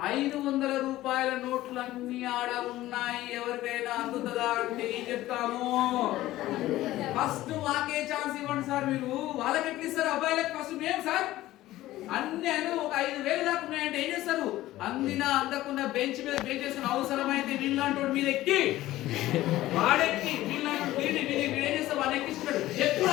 500 రూపాయల నోట్లు అన్ని ఆడ ఉన్నాయి, ఎవరికైనా అందుతుందా అంటే ఏం చెప్తాము? ఫస్ట్ మాకే ఛాన్స్ ఇవ్వండి సార్. మీరు వాళ్ళకి ఎట్లా ఇస్తారు? అబ్బాయిలకు ఫస్ట్ మేము సార్ అన్ని ఒక 5,000 దాకా ఉన్నాయంటే ఏం చేస్తారు? అందినా అందకుండా బెంచ్ మీద బెంచ్ చేసుకుని అవసరమైతే వీళ్ళంటోడు మీద ఎక్కి వాడెక్కి వీళ్ళంటే ఏం చేస్తారు? వాడు ఎక్కిస్తాడు.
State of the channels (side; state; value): right; quieter; 15.8 dB